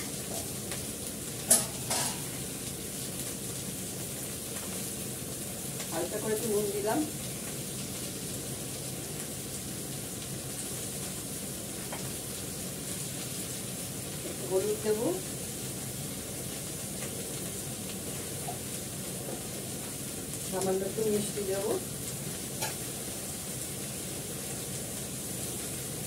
হালকা করে একটু নুন দিলাম, একটু হলুদ দেবো, সামান্য একটু মিষ্টি দেবো,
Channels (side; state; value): right; noise; hum, 17 dB below the sound